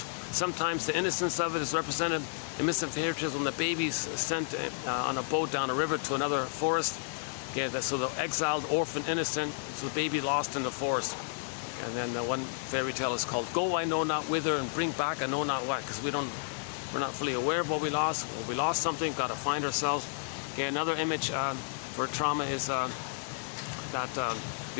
Sometimes the innocence of it is represented in Missing Fairy Tales when the baby's sent on a boat down a river to another forest. Okay, so the exiled, orphan, innocent, so the baby lost in the forest. And then one fairy tale is called Go I Know Not Whither and Bring Back I Know Not What, because we're not fully aware of what we lost. When we lost something, got to find ourselves. Okay, another image for trauma is that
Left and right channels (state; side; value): silent; right; digital silence